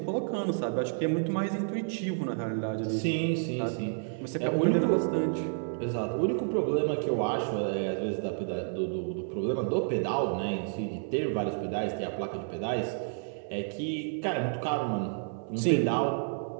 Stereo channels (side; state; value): left; silent; 58 dB below the other